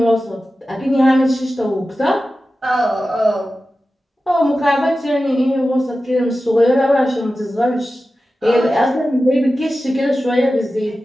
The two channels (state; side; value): normal; both; correlation 0.94